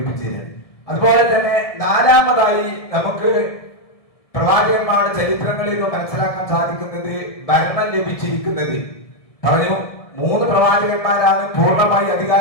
തരാം. അതുപോലെ തന്നെ നാലാമതായി നമുക്ക് പ്രവാചകന്മാരുടെ ചരിത്രങ്ങളിൽ നിന്ന് മനസ്സിലാക്കാൻ സാധിക്കുന്നത് ഭരണം ലഭിച്ചിരിക്കുന്നത്. പറഞ്ഞു, 3 പ്രവാചകന്മാരാണ് പൂർണ്ണമായി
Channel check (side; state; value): right; late; 1.7 ms